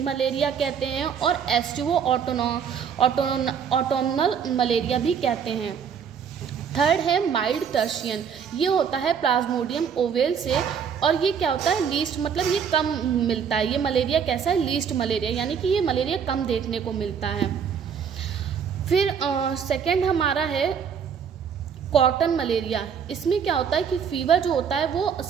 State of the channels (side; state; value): left; quieter; 7.2 dB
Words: मलेरिया कहते हैं और एस्टिवो ऑटोनल मलेरिया भी कहते हैं। थर्ड है माइल्ड टर्शियन, ये होता है प्लाज्मोडियम ओवेल से, और ये क्या होता है? लीस्ट, मतलब ये कम मिलता है। ये मलेरिया कैसा है? लीस्ट मलेरिया, यानी कि ये मलेरिया कम देखने को मिलता है। फिर सेकंड हमारा है कॉटन मलेरिया। इसमें क्या होता है कि फीवर जो होता है वो